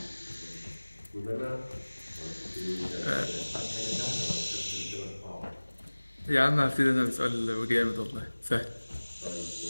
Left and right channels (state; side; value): inverted; both; correlation -1.00